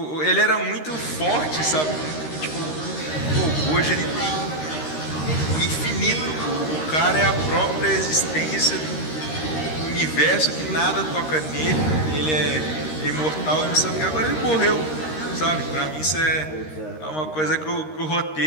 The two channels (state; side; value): late; right; 13 ms